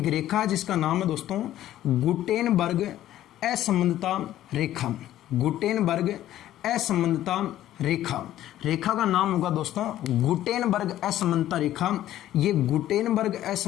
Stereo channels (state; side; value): quieter; right; 13.1 dB